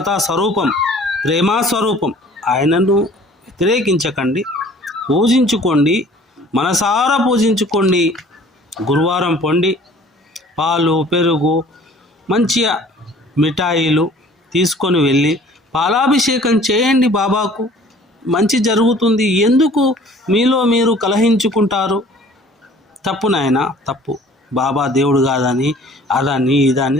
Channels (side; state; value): both; normal; correlation 0.51